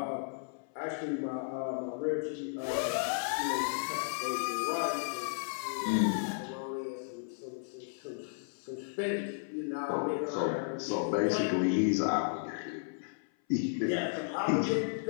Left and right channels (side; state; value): right; silent; 55 dB below the other